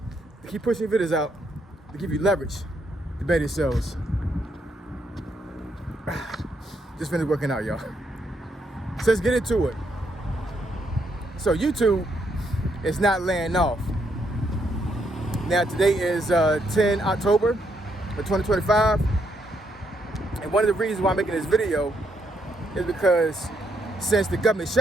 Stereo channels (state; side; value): normal; both; correlation 0.76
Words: to keep pushing videos out to give you leverage to better yourselves. Just finished working out, y'all. So let's get into it. So YouTube is not laying off. Now today is 10 October of 2025. And one of the reasons why I'm making this video is because since the government